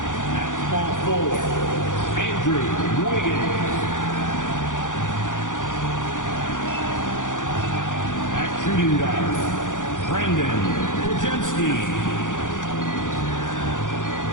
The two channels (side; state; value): right; late; 0.87 ms